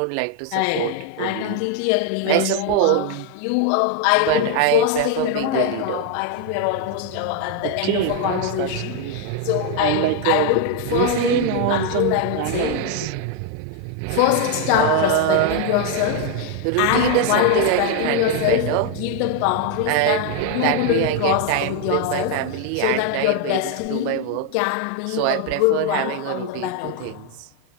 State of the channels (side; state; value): both; different; correlation 0.00